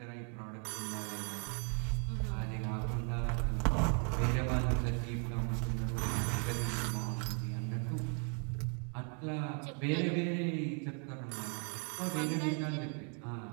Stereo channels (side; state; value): left; quieter; 39.3 dB